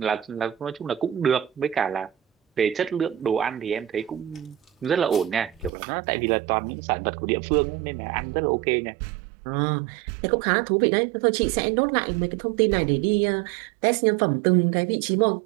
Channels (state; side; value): drops out; left; at 5.7 s